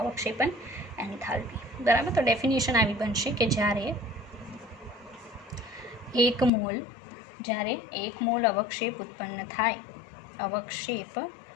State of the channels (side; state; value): right; drops out; at 6.5 s